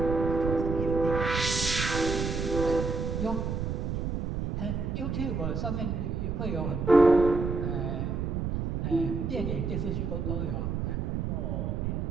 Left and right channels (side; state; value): right; noise; rumble, 1 dB below the sound